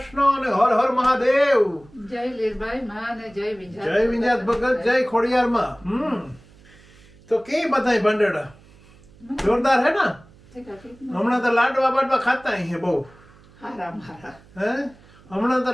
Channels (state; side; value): noise; right; hum, 26 dB below the sound